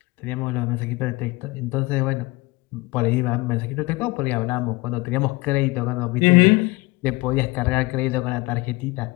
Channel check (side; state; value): right; quieter; 23.0 dB